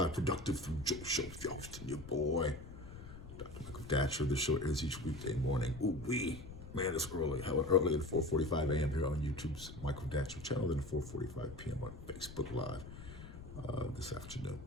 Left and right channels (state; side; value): noise; left; rumble, 13 dB below the sound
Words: Productive from Joe Show with your host and your boy, Dr. Michael Datcher. The show airs each weekday morning. Ooh wee, man, it's early. How early at 4:45 a.m. here on YouTube's Michael Datcher channel, then 4:45 p.m. on Facebook Live this afternoon.